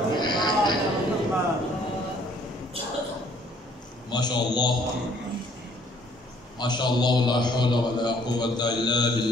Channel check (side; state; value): both; normal; correlation 0.61